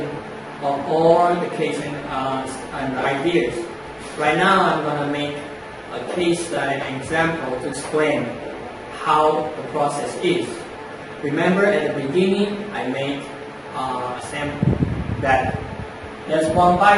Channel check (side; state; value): both; identical; correlation 1.00